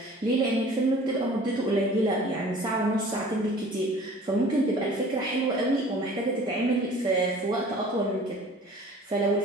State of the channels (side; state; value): both; normal; correlation 0.47